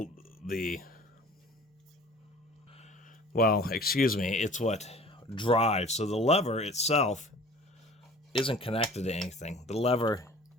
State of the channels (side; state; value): both; normal; correlation 0.46